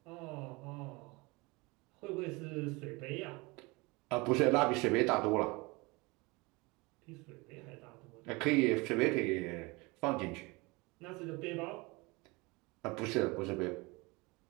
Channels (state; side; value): quieter; left; 25.4 dB